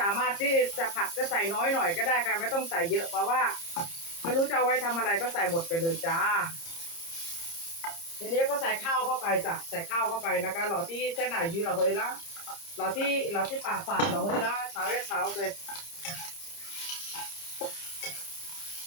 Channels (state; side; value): late; right; 30 ms